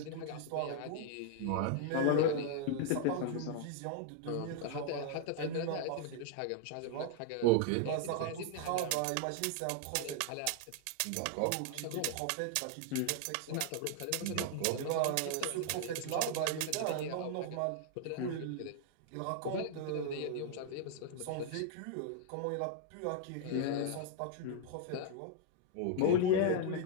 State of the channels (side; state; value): both; different; correlation 0.00